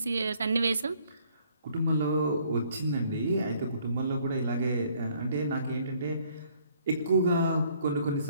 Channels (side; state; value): both; inverted; correlation -0.63